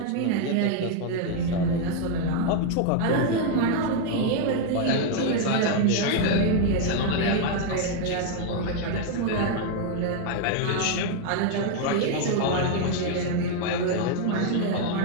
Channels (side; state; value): both; different; correlation 0.00